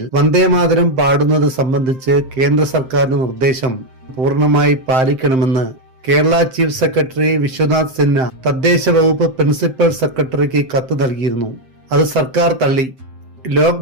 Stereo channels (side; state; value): left; late; 7.7 ms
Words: വന്ദേ മാതരം പാടുന്നത് സംബന്ധിച്ച് കേന്ദ്ര സർക്കാരിന്റെ നിർദ്ദേശം പൂർണ്ണമായി പാലിക്കണമെന്ന് കേരള ചീഫ് സെക്രട്ടറി വിശ്വനാഥ് സിൻഹ തദ്ദേശ വകുപ്പ് പ്രിൻസിപ്പൽ സെക്രട്ടറിക്ക് കത്ത് നൽകിയിരുന്നു. അത് സർക്കാർ തള്ളി. ലോക്